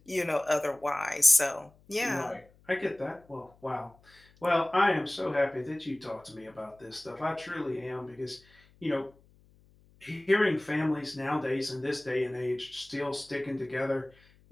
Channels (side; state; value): left; noise; hum, 29 dB below the sound